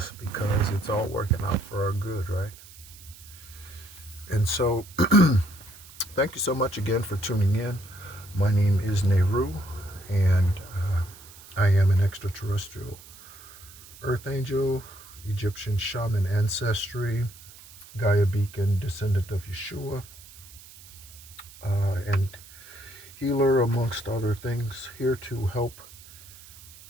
because it's all working out for our good, right? And so, thank you so much again for tuning in. My name is Nehru, and I am an extraterrestrial Earth Angel, Egyptian Shaman ancestry, Gaia Beacon descendant of Yeshua, and healer amongst other things, here to help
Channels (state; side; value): noise; right; hiss, 20 dB below the sound